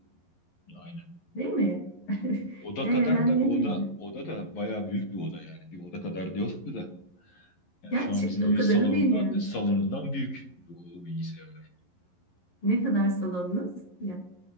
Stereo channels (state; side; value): late; right; 11 ms